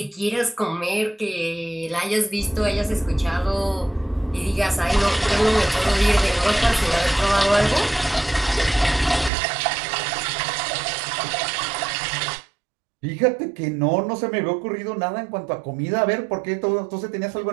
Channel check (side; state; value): left; drops out; at 9.3 s